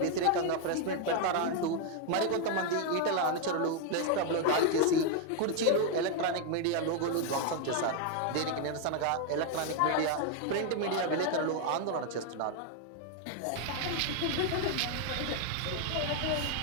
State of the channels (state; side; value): different; both; correlation 0.00